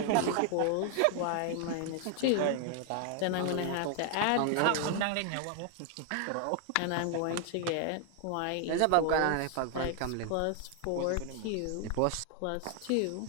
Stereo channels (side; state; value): both; different; correlation 0.00